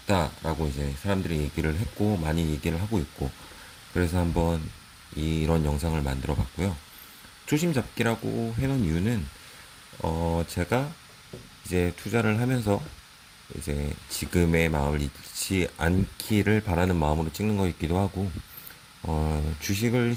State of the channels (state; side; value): identical; both; correlation 1.00